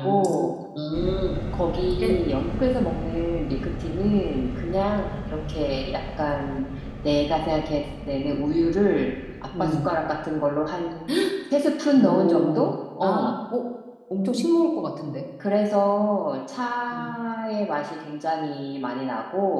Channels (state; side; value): identical; both; correlation 1.00